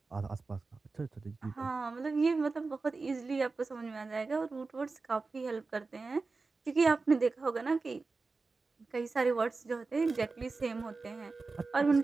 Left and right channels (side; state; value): left; quieter; 4.0 dB